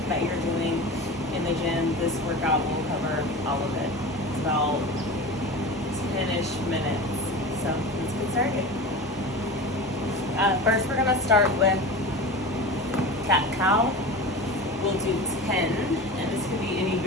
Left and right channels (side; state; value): both; normal; correlation 0.30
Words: that you're doing in the gym. This workout will cover all of it. It's about 10-ish minutes. So let's get started. First, we're gonna start with cat-cow. We'll do 10, and this could be any